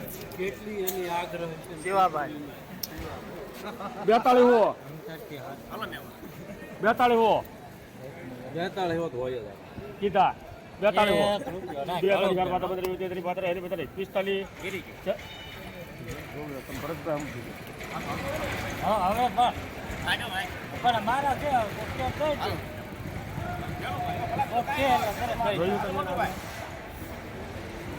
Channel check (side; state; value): both; identical; correlation 1.00